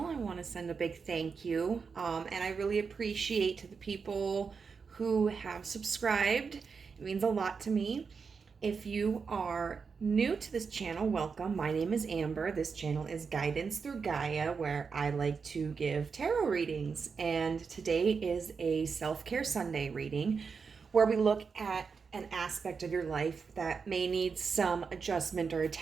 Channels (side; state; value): left; quieter; 5.5 dB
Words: I want to send a big thank you. And I really appreciate to the people who have subscribed. It means a lot to me. If you are new to this channel, welcome. My name is Amber. This channel is Guidance Through Gaia, where I like to give tarot readings. And today is a self-care Sunday reading where we look at an aspect of your life that may need some adjustment or